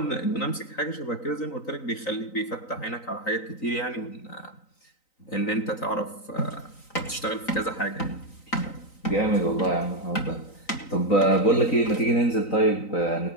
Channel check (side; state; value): right; late; 3.9 ms